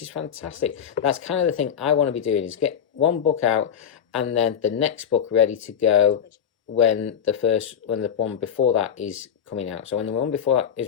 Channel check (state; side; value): quieter; right; 8.4 dB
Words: is fantastic. That's kind of the thing I want to be doing, is get one book out and then the next book ready to go when the one before that is coming out. So when the one before that